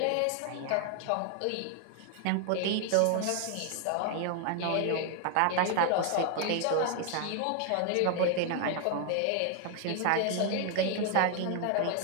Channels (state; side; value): different; both; correlation 0.00